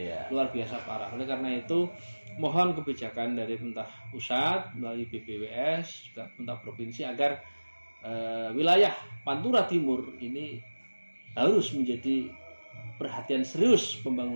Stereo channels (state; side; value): inverted; both; correlation -1.00